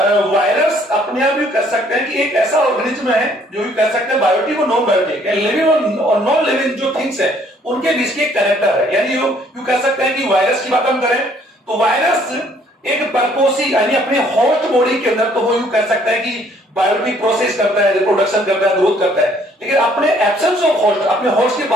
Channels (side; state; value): both; normal; correlation 0.62